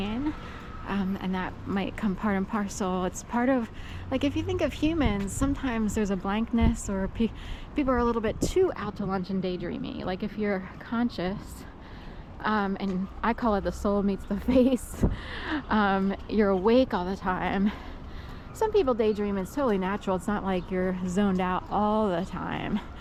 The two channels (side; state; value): both; identical; correlation 1.00